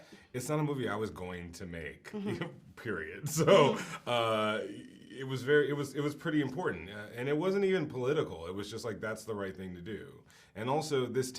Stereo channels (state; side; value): identical; both; correlation 1.00